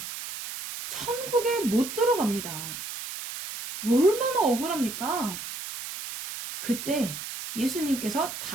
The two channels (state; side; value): noise; right; hiss, 8 dB below the sound